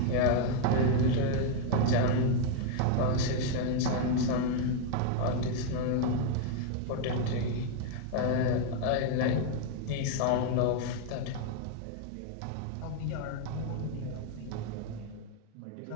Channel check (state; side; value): different; both; correlation 0.00